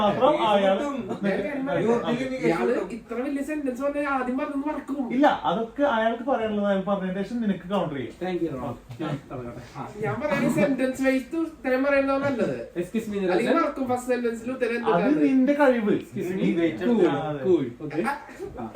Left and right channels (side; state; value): both; identical; correlation 1.00